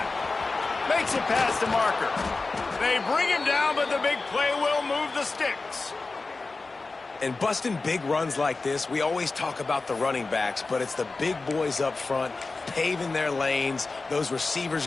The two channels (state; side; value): quieter; right; 3.7 dB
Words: Makes it past the marker. They bring him down, but the big play will move the sticks. And busting big runs like this, we always talk about the running backs, but it's the big boys up front, paving their lanes, those